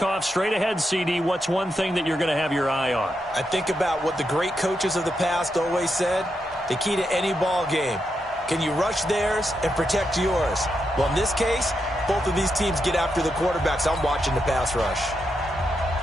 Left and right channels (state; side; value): normal; both; correlation 0.84